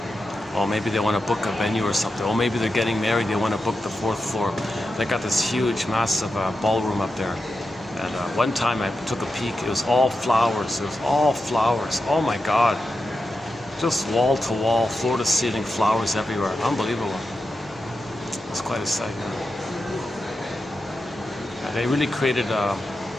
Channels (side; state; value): both; normal; correlation 0.89